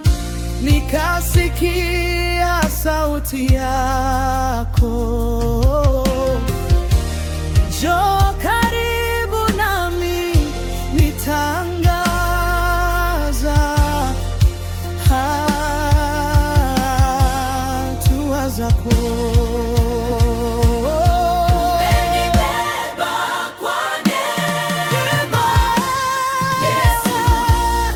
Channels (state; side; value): identical; both; correlation 1.00